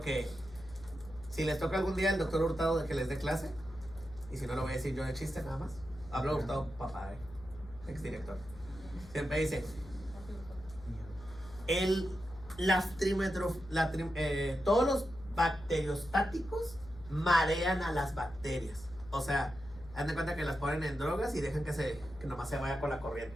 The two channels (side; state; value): left; noise; hum, 18 dB below the sound